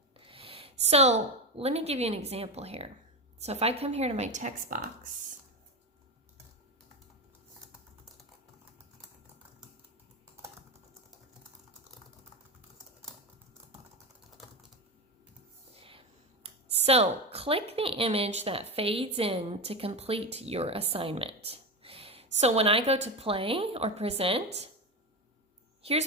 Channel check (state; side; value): normal; both; correlation 0.18